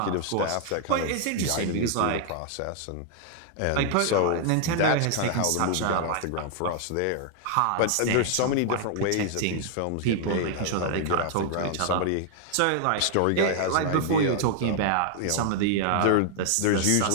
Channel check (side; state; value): both; different; correlation -0.01